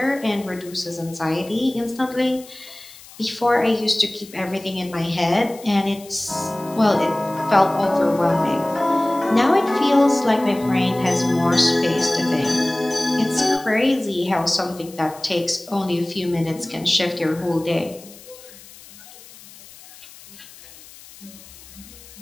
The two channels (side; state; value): left; noise; hiss, 20 dB below the sound